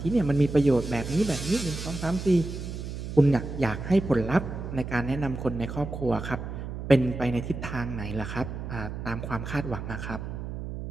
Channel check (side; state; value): right; noise; hum, 7 dB below the sound